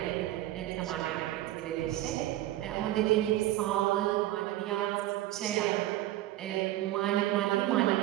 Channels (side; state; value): left; quieter; 15.1 dB